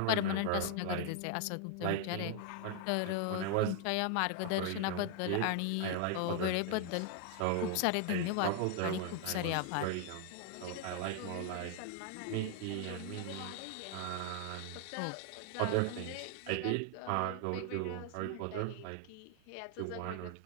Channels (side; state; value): both; different; correlation 0.00